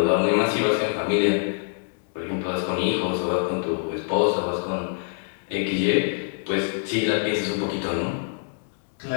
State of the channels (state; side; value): silent; right; digital silence